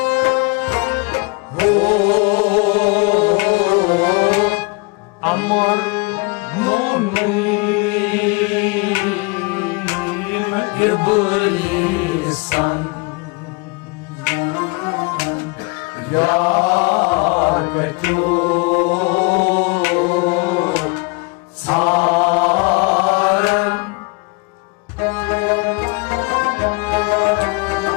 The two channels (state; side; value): quieter; right; 29.1 dB